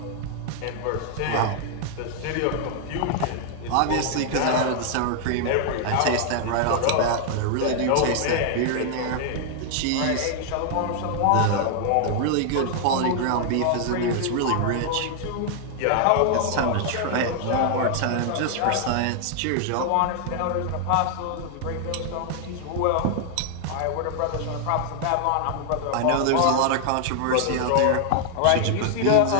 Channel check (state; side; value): different; both; correlation 0.00